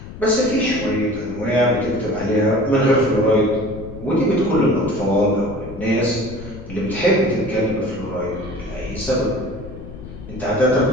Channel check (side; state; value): left; noise; rumble, 13 dB below the sound